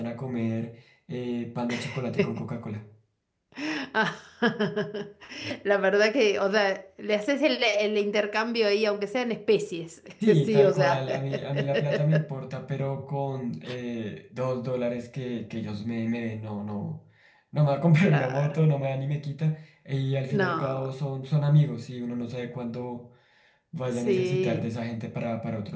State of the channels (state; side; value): identical; both; correlation 1.00